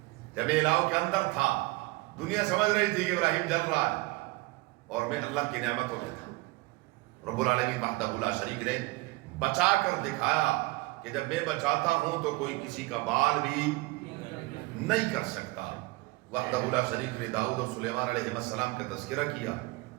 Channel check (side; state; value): left; quieter; 22.7 dB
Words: جب الہو کے اندر تھا، دنیا سمجھ رہی تھی کہ ابراہیم جل رہا ہے، اور میں اللہ کی نعمتوں میں تھا۔ رب العالمین وحدہ لا شریک نے بچا کر دکھایا کہ جب میں بچاتا ہوں تو کوئی کسی کا بال بھی نہیں کر سکتا۔ وحدہ لا شریک نے داؤد اور سلیمان علیہ السلام کا تذکرہ کیا۔